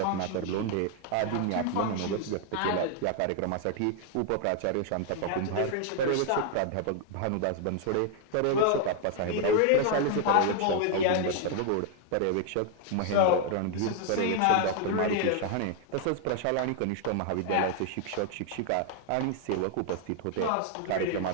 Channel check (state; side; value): different; both; correlation 0.00